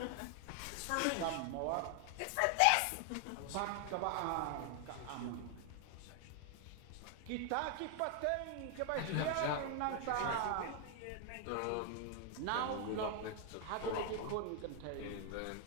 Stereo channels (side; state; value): both; different; correlation 0.00